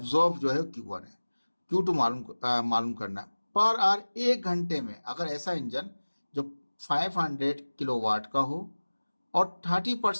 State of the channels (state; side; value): inverted; both; correlation -1.00